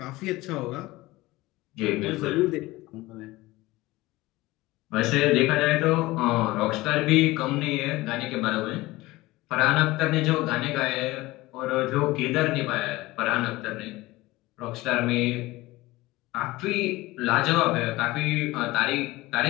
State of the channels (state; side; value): quieter; right; 19.4 dB